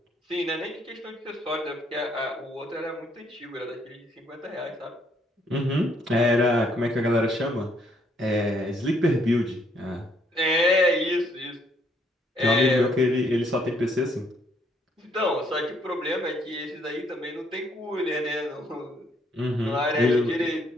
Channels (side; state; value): both; normal; correlation 0.69